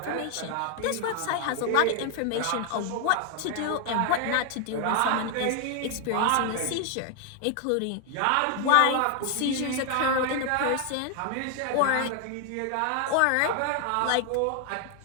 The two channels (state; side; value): different; both; correlation 0.00